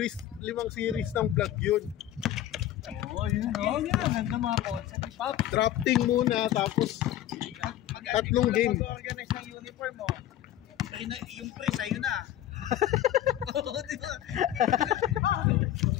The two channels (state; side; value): quieter; right; 12.6 dB